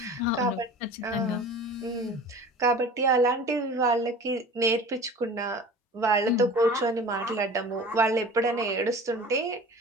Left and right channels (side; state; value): both; normal; correlation 0.40